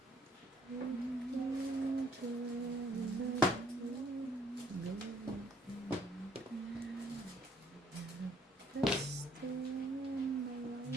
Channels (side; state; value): both; normal; correlation 0.64